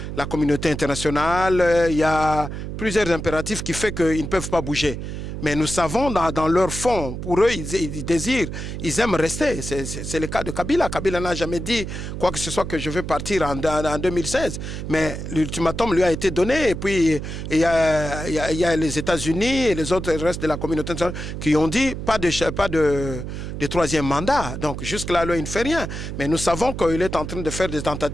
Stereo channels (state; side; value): noise; right; hum, 7 dB below the sound